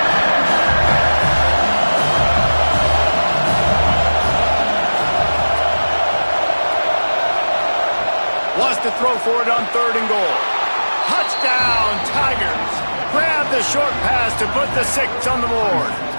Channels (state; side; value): inverted; both; correlation -1.00